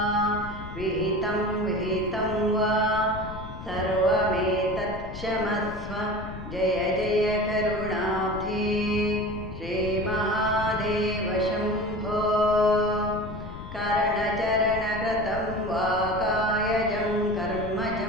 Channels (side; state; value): left; noise; rumble, 11 dB below the sound